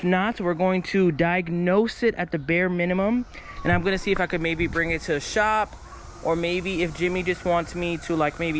not, we're going to diagnose it at the bare minimum. And I'm gonna see if I could maybe bring it to a shop, or maybe if Jimmy just wants me to like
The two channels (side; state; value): both; identical; correlation 1.00